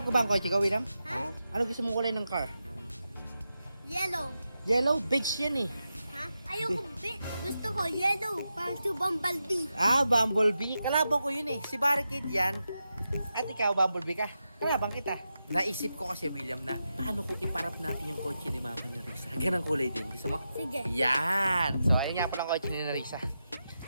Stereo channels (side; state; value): both; inverted; correlation -0.89